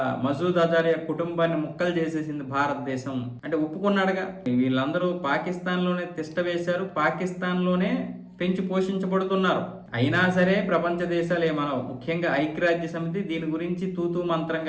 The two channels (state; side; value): identical; both; correlation 1.00